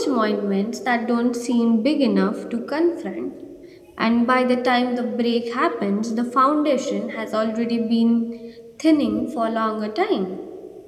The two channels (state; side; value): identical; both; correlation 1.00